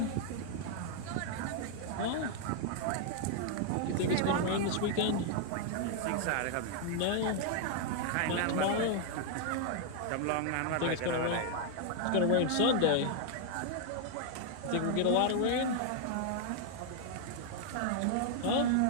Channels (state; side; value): different; both; correlation 0.00